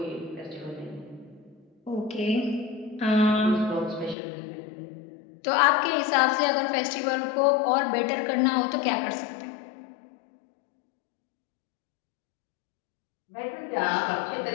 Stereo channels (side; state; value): right; drops out; at 4.2 s